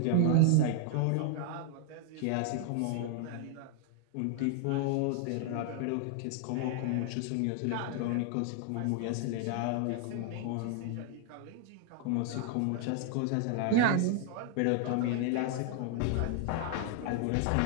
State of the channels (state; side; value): different; both; correlation 0.00